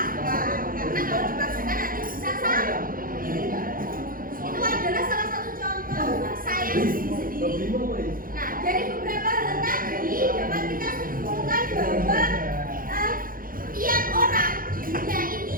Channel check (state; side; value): late; left; 0.41 ms